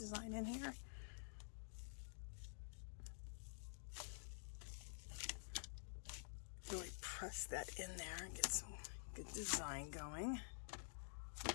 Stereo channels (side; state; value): right; silent; digital silence